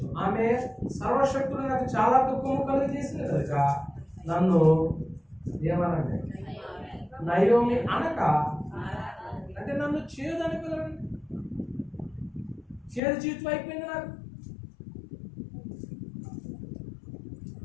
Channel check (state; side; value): drops out; right; at 13.0 s